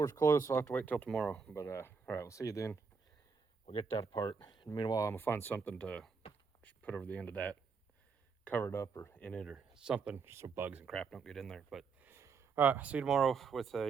closed, so I'll have to wait till tomorrow. But all right, we'll see you then. We'll get that apart. And meanwhile, I'm gonna find something to put over the end of that, cover it up or in it or something, so bugs and crap don't get in there. But all right, see you tomorrow with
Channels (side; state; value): left; quieter; 5.3 dB